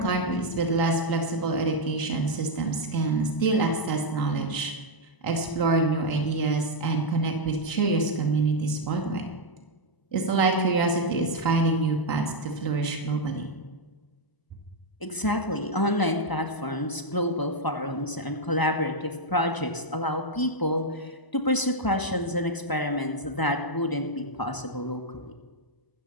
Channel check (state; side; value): late; right; 1.0 ms